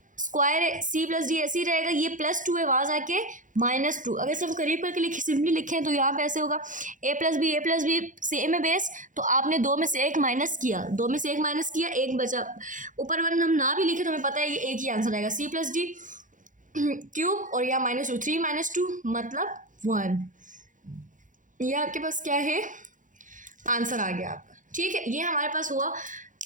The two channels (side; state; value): left; late; 0.37 ms